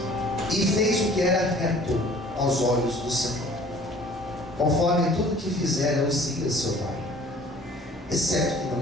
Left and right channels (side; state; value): both; normal; correlation 0.51